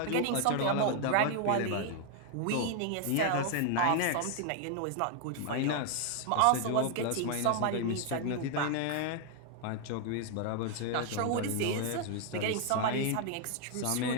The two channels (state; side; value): different; both; correlation 0.00